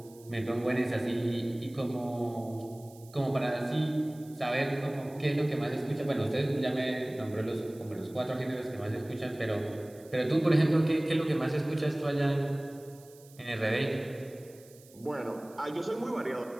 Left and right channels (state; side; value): noise; right; hiss, 24 dB below the sound